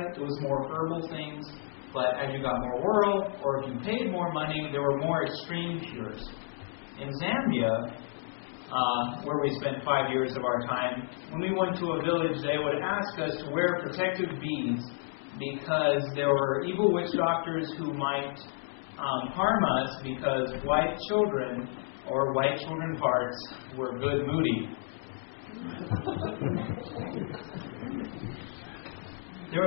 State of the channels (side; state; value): right; silent; 57 dB below the other